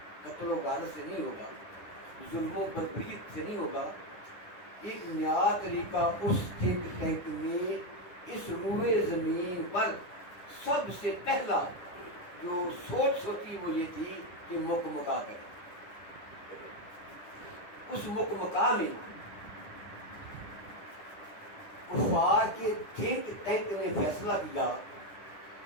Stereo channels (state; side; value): late; right; 9.9 ms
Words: قتل و غارت سے نہیں ہوگا، ظلم و بربریت سے نہیں ہوگا۔ ایک نیا طریقہ اس تھنک ٹینک میں اس روئے زمین پر سب سے پہلا جو سوچ سوچی وہ یہ تھی کہ مک مکا کرے۔ اس مک مکا میں کفار کے تھنک ٹینک نے فیصلہ کیا